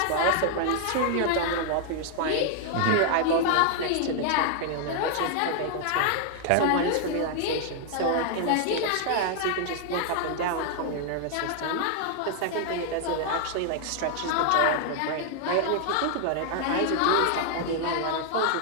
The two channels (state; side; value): different; both; correlation 0.00